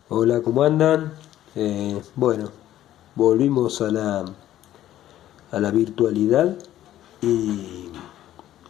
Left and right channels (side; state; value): right; quieter; 12.9 dB